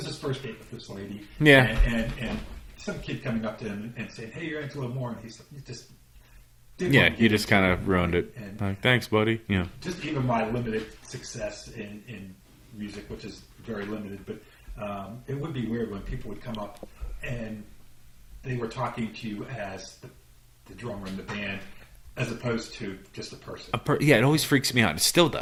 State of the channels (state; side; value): identical; both; correlation 1.00